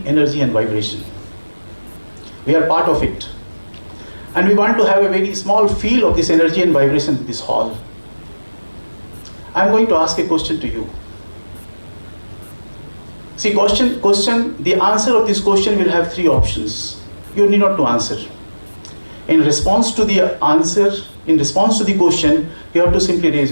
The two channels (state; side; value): inverted; both; correlation -1.00